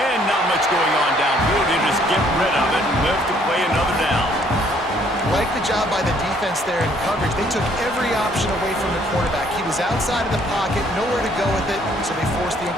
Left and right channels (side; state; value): both; normal; correlation 0.63